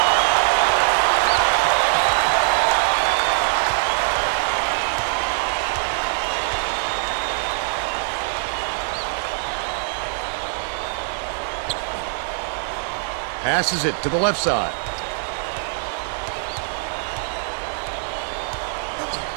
Passes it to the left side.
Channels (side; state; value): left; silent; 56 dB below the other